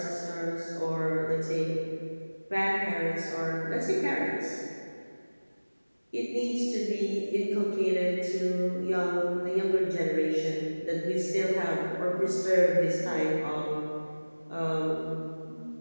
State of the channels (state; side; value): inverted; both; correlation -1.00